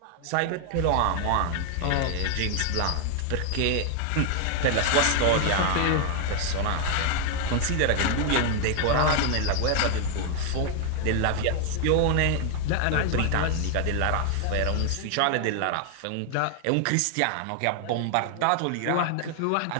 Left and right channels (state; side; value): different; both; correlation 0.00